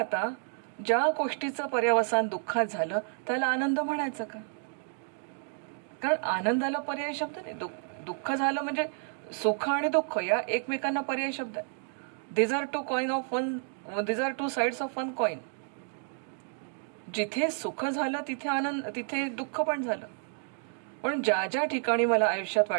ज्या गोष्टीचं पर्यवसान दुःखात झालं त्याला आनंद म्हणायचं का? कारण आनंदाला पर्याय शब्द नाही. दुःख झालं म्हणजे सुख आणि दुःख या एकमेकांना पर्याय शब्द आहे. These are two sides of one coin. जिथे सुख झालं तिथे आनंद, तिथे दुःख पण झालं. पण ज्या ज्या ठिकाणी मला आयुष्यात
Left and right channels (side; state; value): left; silent; 57 dB below the other